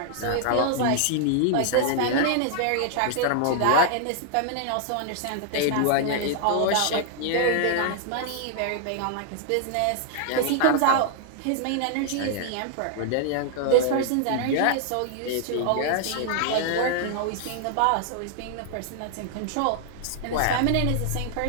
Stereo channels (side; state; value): both; different; correlation -0.01